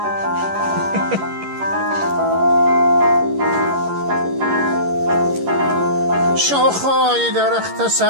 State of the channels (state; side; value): late; left; 11 ms